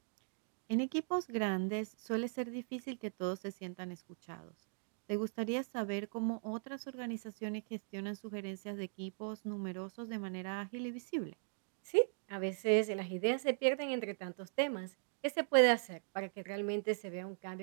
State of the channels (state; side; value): silent; left; digital silence